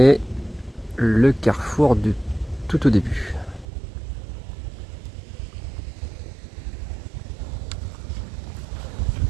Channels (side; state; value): left; drops out; at 3.7 s